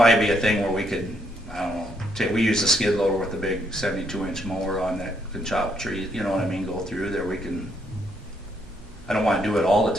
be a thing where we could, I don't know, we use the skid loader with the big 72-inch mower on that can chop trees, you know what I mean, go through there, we can, I don't want to do it all the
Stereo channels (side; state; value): right; noise; hum, 22 dB below the sound